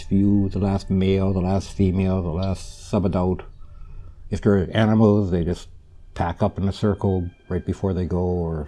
few, the last male, the last female, the last subadult. If they're animals, they just pack up in a circle right before they go, or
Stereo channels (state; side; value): identical; both; correlation 1.00